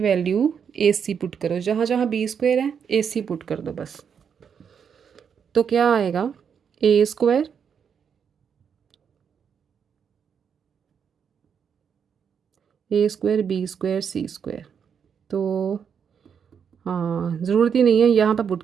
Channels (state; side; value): quieter; left; 7.2 dB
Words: A C put करो, जहाँ जहाँ बी स्क्वायर है ए सी पुट कर दो बस. तो क्या आएगा, ए square B square C square. तो हाँ, ज़रूरत ही नहीं है, यहाँ पर पुट